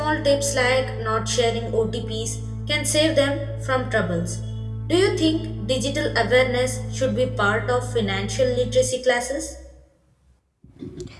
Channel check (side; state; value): both; identical; correlation 1.00